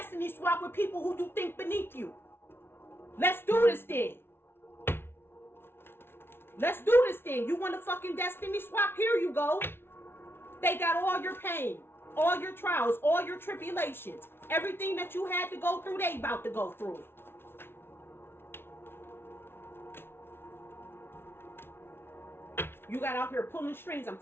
swap with people who do think beneath you. Let's do this then. Let's do this then. You want to fucking destiny swap? Here you go. They got all your pain, all your trials, all your tribulations. Everything that you had to go through, they about to go through it. You got out here pulling strings. I'm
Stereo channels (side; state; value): right; late; 0.11 ms